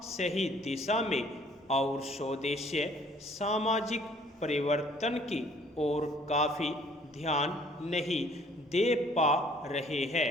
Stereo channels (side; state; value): both; normal; correlation 0.58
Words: सही दिशा में और स्वदेशीय सामाजिक परिवर्तन की ओर काफ़ी ध्यान नहीं दे पा रहे